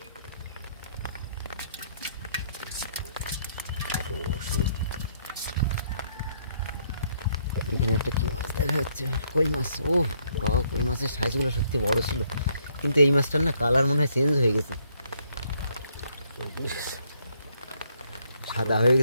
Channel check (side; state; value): both; inverted; correlation -0.69